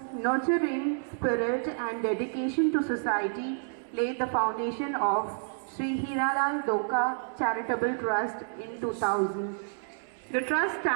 nurturing spirit and dedication to society laid the foundation of Sri Hiralal Doka Charitable Trust in 2000. The trust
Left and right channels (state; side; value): silent; left; 58 dB below the other